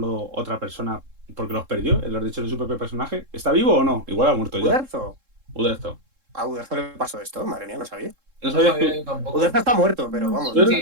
otra persona porque los perdió, los derechos de su propio personaje. ¿Está vivo o no? Igual ha muerto ya. Uderzo. Uderzo. A Uderzo le pasó esto, madre mía, no sabía. No No sabías sabía que yo tampoco. Uderzo está muerto, pero vamos. Uderzo Sí,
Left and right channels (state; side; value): late; left; 3.7 ms